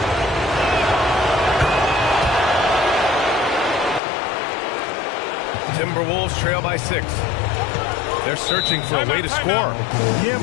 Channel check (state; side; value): drops out; right; at 4.0 s